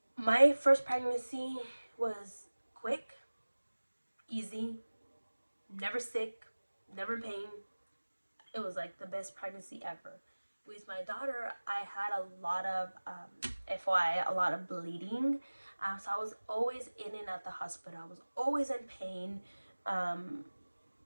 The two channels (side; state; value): both; inverted; correlation -1.00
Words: My first pregnancy was quick, easy, never sick, never pain. It was like the best pregnancy ever. With my daughter, I had a lot of, FYI, a lot of bleeding. So I was always in and out the hospital. I was always in pain. Um,